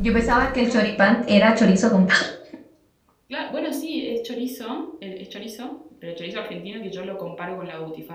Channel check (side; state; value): both; identical; correlation 1.00